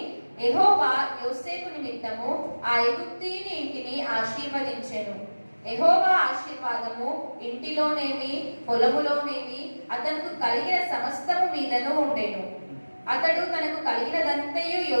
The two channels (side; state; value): both; inverted; correlation -1.00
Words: యెహోవా యోసేపు నిమిత్తము ఆ ఐగుప్తీయుని ఇంటిని ఆశీర్వదించెను. యెహోవా ఆశీర్వాదము ఇంటిలోనేమి పొలములోనేమి అతనికి కలిగిన సమస్తము మీదను ఉండెను. అతడు తనకు కలిగినదంతయు